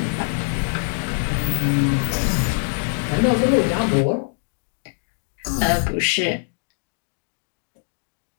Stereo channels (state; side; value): silent; right; 63 dB below the other